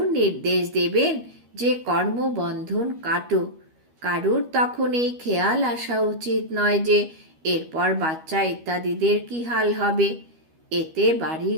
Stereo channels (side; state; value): left; late; 13 ms